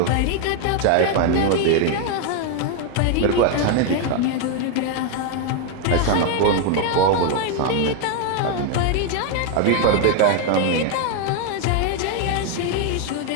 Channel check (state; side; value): different; both; correlation 0.01